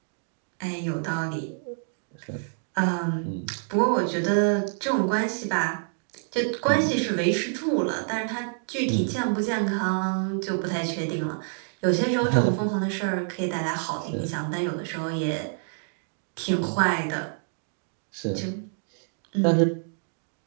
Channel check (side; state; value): left; silent; 60 dB below the other